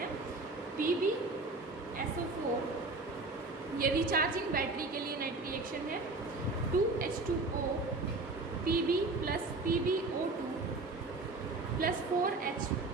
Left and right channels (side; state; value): left; quieter; 3.4 dB